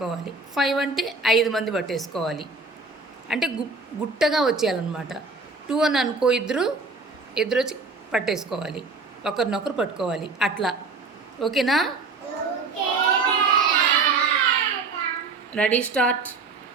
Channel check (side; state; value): left; quieter; 4.0 dB